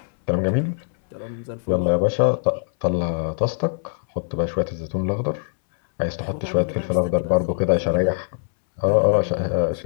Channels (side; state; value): right; silent; 62 dB below the other